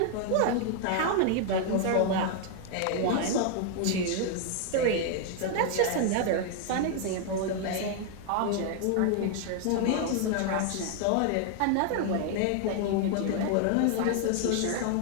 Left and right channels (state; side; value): different; both; correlation 0.00